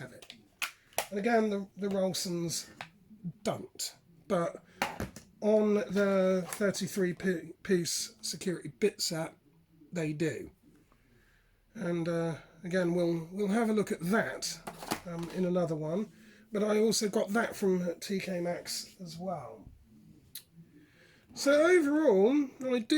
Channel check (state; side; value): identical; both; correlation 1.00